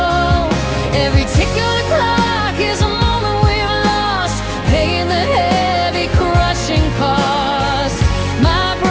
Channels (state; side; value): identical; both; correlation 1.00